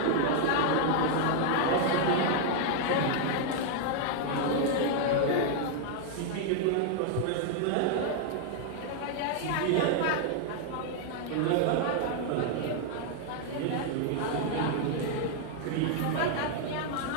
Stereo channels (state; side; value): different; both; correlation 0.00